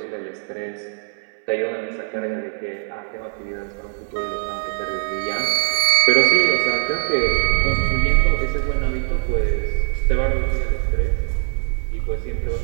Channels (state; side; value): silent; left; 65 dB below the other